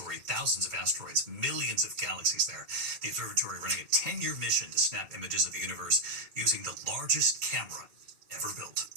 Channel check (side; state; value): left; late; 2.3 ms